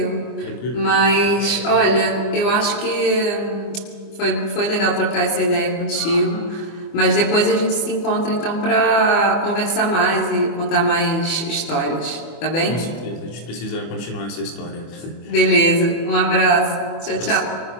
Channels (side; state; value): right; late; 25 ms